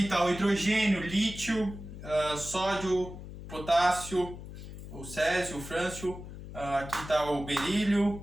está o hidrogênio, lítio, sódio, potássio, o césio, o frâncio, aqui está o berílio,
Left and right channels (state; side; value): noise; left; hum, 12 dB below the sound